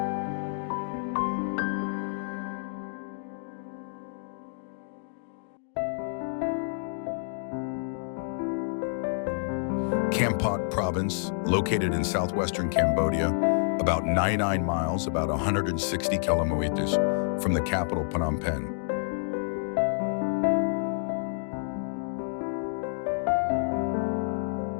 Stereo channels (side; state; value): right; silent; digital silence